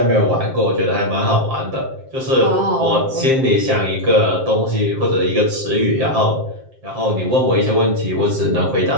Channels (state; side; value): late; left; 7.6 ms